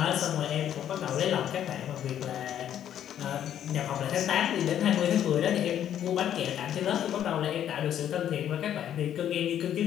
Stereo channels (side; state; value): right; quieter; 10.4 dB